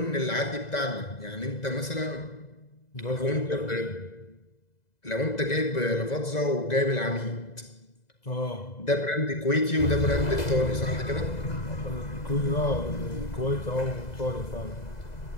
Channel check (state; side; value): late; right; 2.0 ms